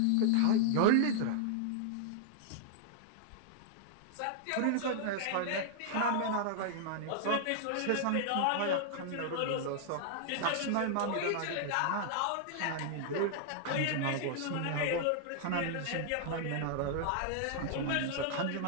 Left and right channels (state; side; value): different; both; correlation -0.01